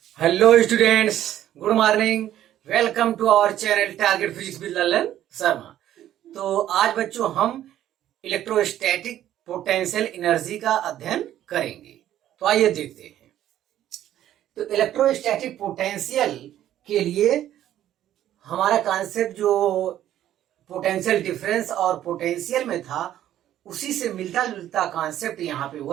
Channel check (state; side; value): quieter; left; 12.1 dB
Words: Hello students, good morning. Welcome to our channel target physics with Lalan Sharma. तो आज बच्चों हम इलेक्ट्रोस्टैटिक पोटेंशियल एनर्जी का अध्ययन करेंगे। तो आइए देखते हैं। तो इलेक्ट्रोस्टैटिक पोटेंशियल के लिए हमारा कॉन्सेप्ट जो पोटेंशियल डिफरेंस और पोटेंशियल में था, उसी से मिलता जुलता कॉन्सेप्ट यहाँ पे